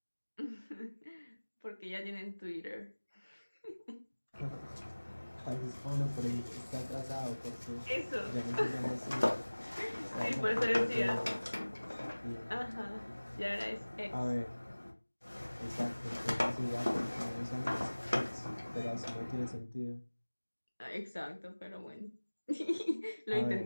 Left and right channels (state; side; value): inverted; both; correlation -1.00